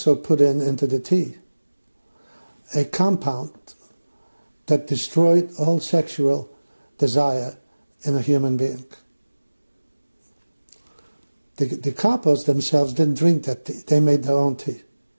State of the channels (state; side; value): inverted; both; correlation -1.00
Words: put into the tea a compound that destroyed all sexual desire in a human being. The kapos themselves didn't drink that tea. They made their own tea.